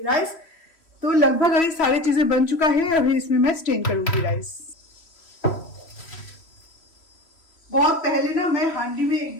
राइस। तो लगभग अभी सारी चीजें बन चुका है। अभी इसमें मैं स्टेन करूंगी राइस। बहुत पहले ना मैं हांडी में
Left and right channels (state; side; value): late; right; 3.1 ms